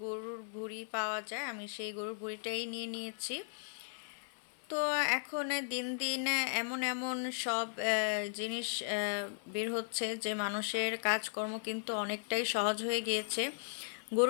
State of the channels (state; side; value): silent; right; 53 dB below the other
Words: গরুর ভুঁড়ি পাওয়া যায়, আমি সেই গরুর ভুঁড়িটাই নিয়ে নিয়েছি। তো এখন দিন দিন এমন এমন সব জিনিস বের হচ্ছে যে মানুষের কাজকর্ম কিন্তু অনেকটাই সহজ হয়ে গিয়েছে।